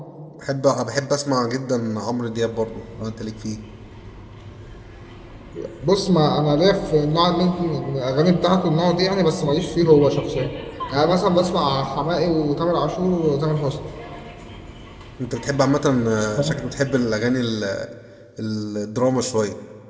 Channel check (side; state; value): both; identical; correlation 1.00